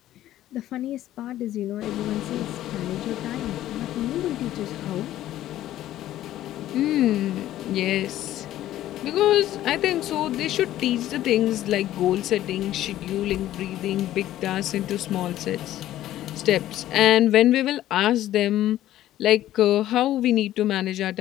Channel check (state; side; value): quieter; right; 13.5 dB